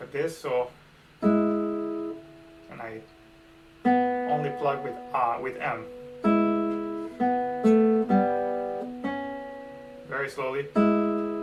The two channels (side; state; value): both; identical; correlation 1.00